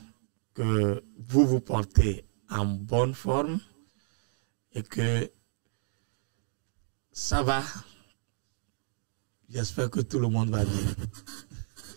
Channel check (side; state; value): left; silent; digital silence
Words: que vous vous portez en bonne forme et que ça va. J'espère que tout le monde va bien.